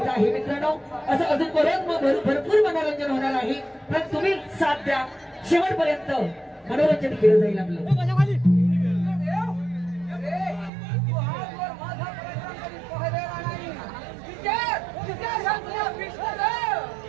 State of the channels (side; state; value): left; drops out; at 10.7 s